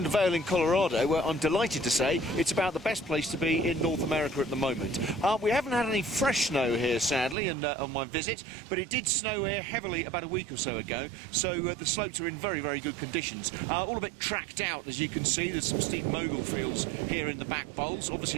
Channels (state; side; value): drops out; left; at 7.4 s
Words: to Vail in Colorado, where I'm delighted to say it's about the best place to be in North America at the moment. We haven't had any fresh snow here, sadly, on my visit, but it did snow here heavily about a week or so ago, so the slopes are in very, very good conditions. All a bit tracked out, as you can see. There's some steep mogul fields here in the back bowls. Obviously